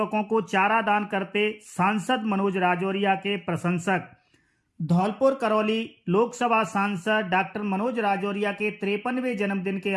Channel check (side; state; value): both; identical; correlation 1.00